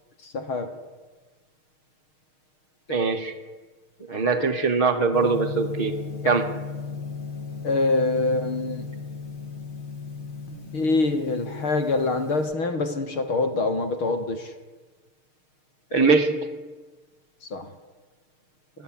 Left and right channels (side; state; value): right; late; 6.5 ms